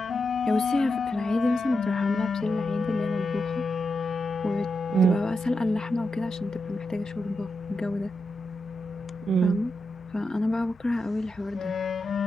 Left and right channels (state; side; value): normal; both; correlation 0.87